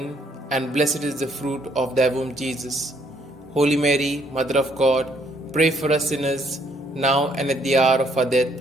and blessed is the fruit of thy womb, Jesus. Holy Mary, Mother of God, pray for us sinners, now and at the hour of our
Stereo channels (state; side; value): normal; both; correlation 0.68